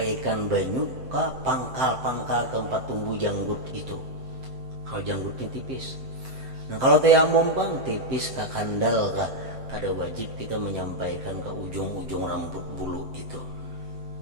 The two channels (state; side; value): late; left; 7.7 ms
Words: banyu ke pangkal-pangkal tempat tumbuh janggut itu. Kalau janggutnya tipis. Nah kalau tayamum pang tipis ke kandal ka, kada wajib kita menyampaikan ke ujung-ujung rambut bulu itu.